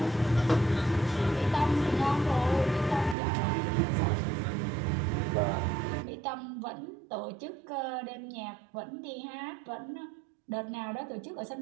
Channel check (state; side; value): drops out; left; at 3.2 s